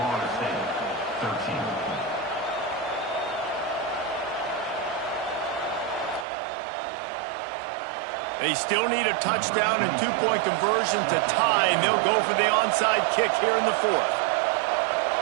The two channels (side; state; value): left; drops out; at 6.2 s